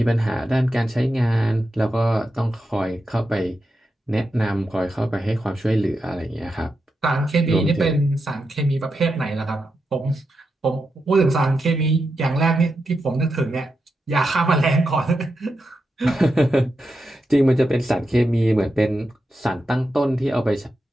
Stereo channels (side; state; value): both; normal; correlation 0.87